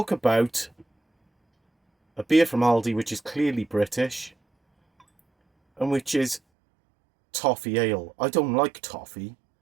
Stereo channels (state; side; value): drops out; left; at 6.4 s